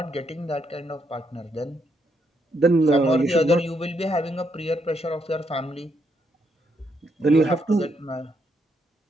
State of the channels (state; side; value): normal; both; correlation 0.77